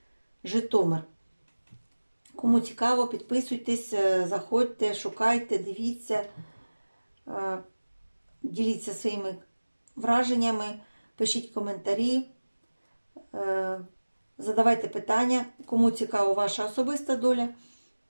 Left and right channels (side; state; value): both; inverted; correlation -1.00